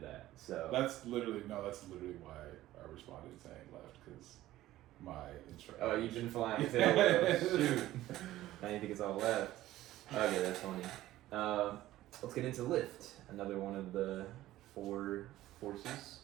that. So that's literally why I responded saying left, because my instructor. Oh, you've been flying tail wheels. Shoot. Now you think it's all left. Okay, that's funny. Let's get into lift. Another one of the 4 forces.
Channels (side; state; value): left; quieter; 15.2 dB